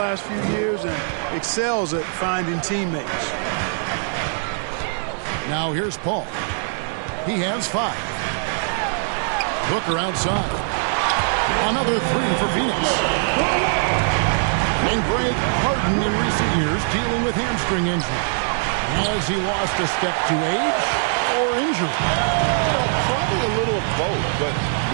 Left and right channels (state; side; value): silent; left; 63 dB below the other